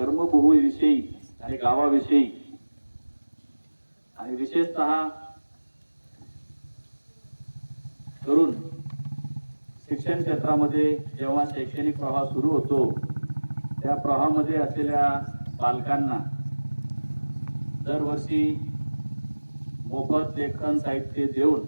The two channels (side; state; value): both; inverted; correlation -1.00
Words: आणि गावाविषयी आणि विशेषतः करून शिक्षण क्षेत्रामध्ये जेव्हा शैक्षणिक प्रवाह सुरू होतो त्या प्रवाहामध्ये असलेल्या बालकांना दरवर्षी मोफत लेखन साहित्य देऊन